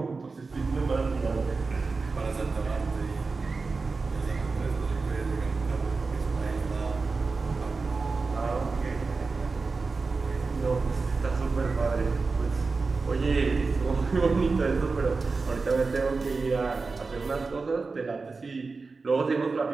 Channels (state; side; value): quieter; left; 4.2 dB